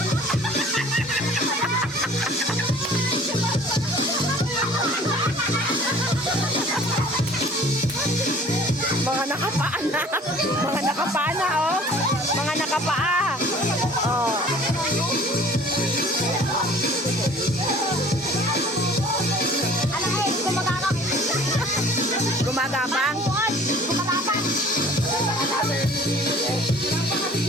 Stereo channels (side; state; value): both; normal; correlation 0.50